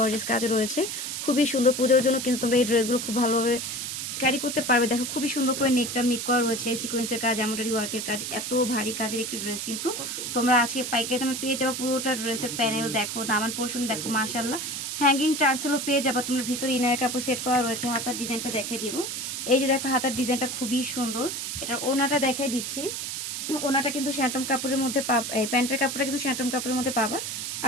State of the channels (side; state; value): right; noise; hiss, 4 dB below the sound